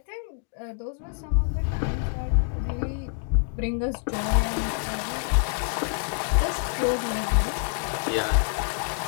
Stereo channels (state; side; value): silent; right; digital silence